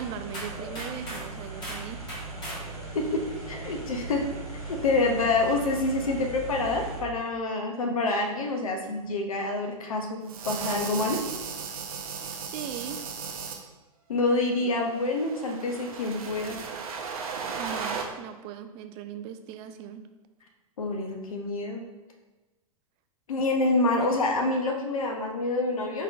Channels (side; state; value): both; normal; correlation -0.05